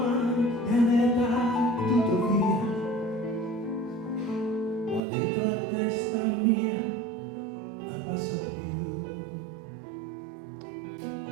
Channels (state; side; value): drops out; left; at 5.0 s